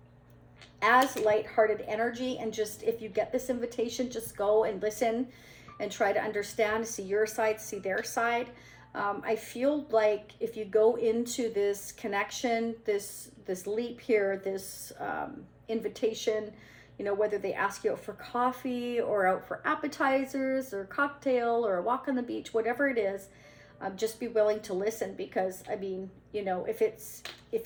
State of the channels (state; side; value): identical; both; correlation 1.00